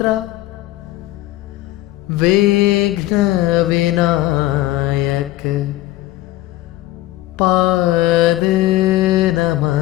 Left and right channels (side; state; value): right; quieter; 16.4 dB